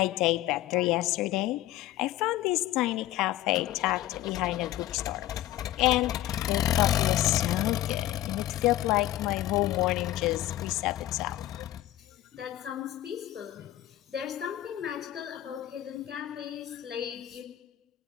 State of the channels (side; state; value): right; quieter; 14.4 dB